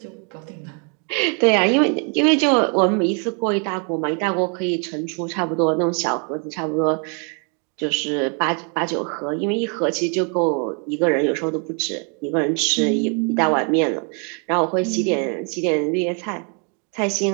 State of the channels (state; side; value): quieter; left; 38.5 dB